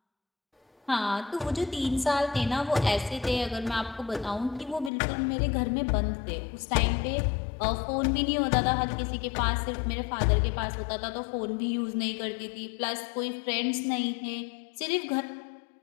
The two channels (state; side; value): drops out; right; at 4.9 s